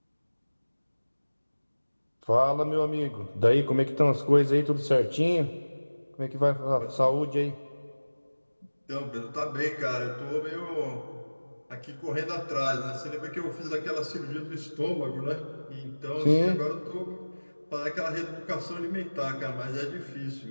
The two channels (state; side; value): inverted; both; correlation -1.00